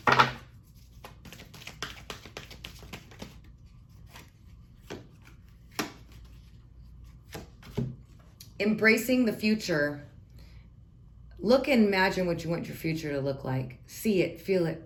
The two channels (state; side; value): identical; both; correlation 1.00